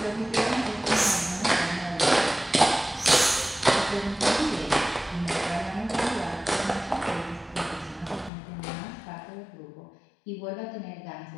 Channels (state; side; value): drops out; right; at 8.3 s